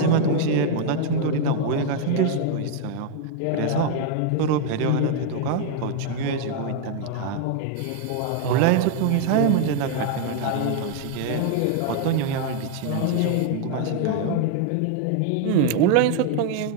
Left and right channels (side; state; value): both; different; correlation 0.00